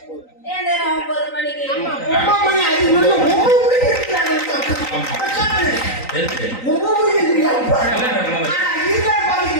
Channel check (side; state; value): right; late; 3.9 ms